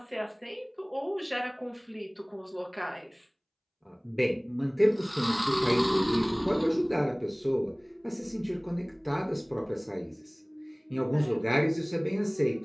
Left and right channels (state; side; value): identical; both; correlation 1.00